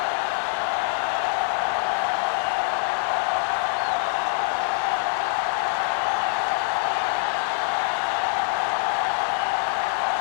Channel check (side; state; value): right; silent; digital silence